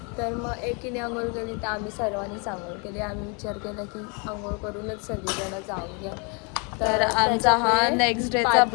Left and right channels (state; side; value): quieter; right; 34.1 dB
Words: तर मग एकीने आंघोळ केली तर आम्ही सर्वांनीच आंघोळ केली. आम्ही विचार केला की आंघोळ करूनच सगळीजणं जाऊन घ्या. तर आमचा हा नेक्स्ट डेचा